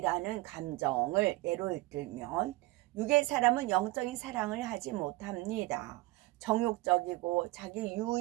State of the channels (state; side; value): quieter; left; 20.5 dB